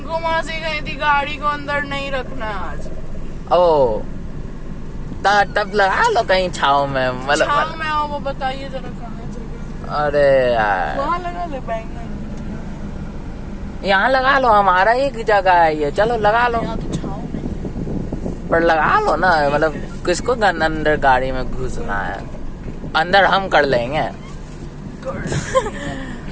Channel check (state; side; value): identical; both; correlation 1.00